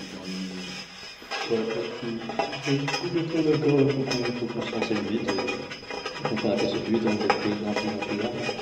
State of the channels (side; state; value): both; identical; correlation 1.00